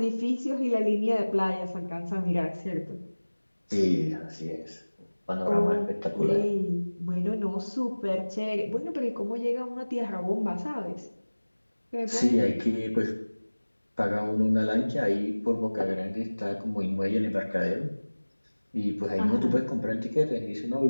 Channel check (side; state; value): both; inverted; correlation -1.00